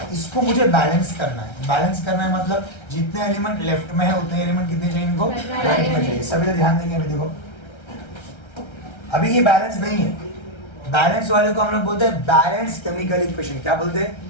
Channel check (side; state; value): right; late; 1.3 ms